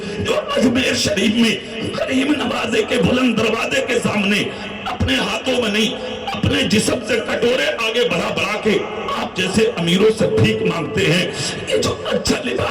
جو اجمیر شریف میں غریب نوازے کے بلند دروازے کے سامنے اپنے ہاتھوں میں نہیں, اپنے جسم سے کٹورے آگے بڑھا کے آپ جیسے امیروں سے بھیک مانگتے ہیں. یہ جو اچھا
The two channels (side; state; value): both; identical; correlation 1.00